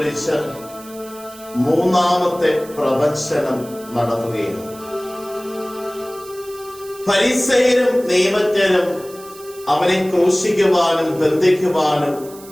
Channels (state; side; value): noise; right; hiss, 20 dB below the sound